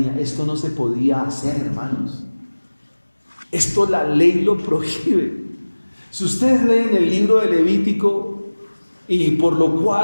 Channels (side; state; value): both; inverted; correlation -1.00